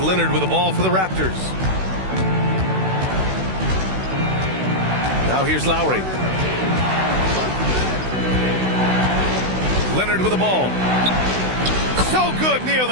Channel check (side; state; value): left; late; 16 ms